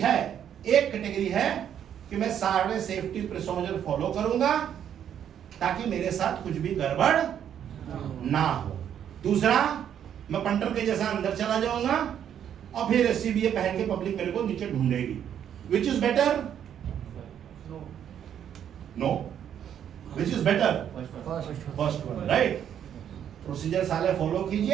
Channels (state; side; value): quieter; left; 9.4 dB